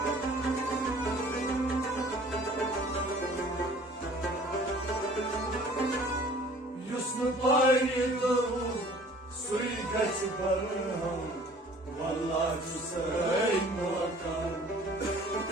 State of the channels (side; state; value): both; normal; correlation 0.51